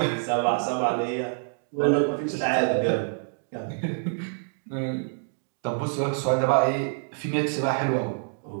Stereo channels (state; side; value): silent; left; digital silence